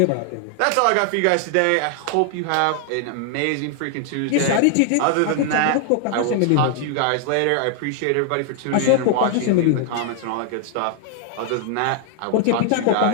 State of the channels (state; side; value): different; both; correlation 0.00